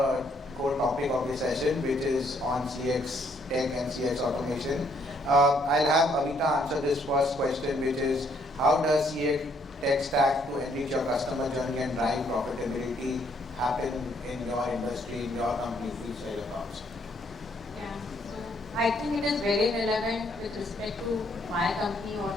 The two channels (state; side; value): normal; both; correlation 0.69